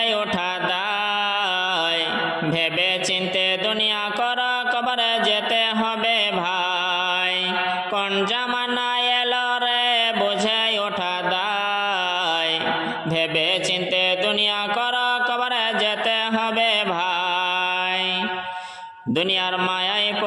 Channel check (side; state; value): both; identical; correlation 1.00